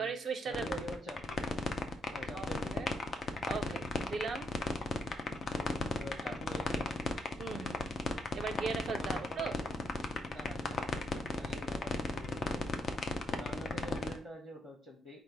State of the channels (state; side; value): normal; both; correlation 0.77